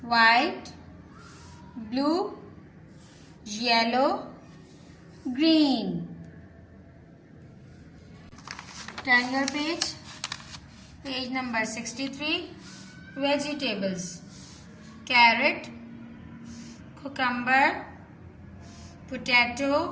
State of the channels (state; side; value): identical; both; correlation 1.00